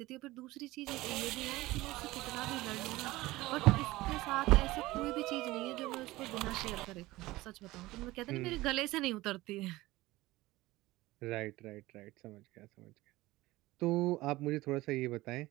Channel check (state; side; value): quieter; left; 18.8 dB